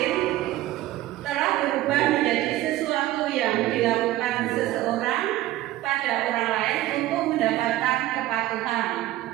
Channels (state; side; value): quieter; left; 15.6 dB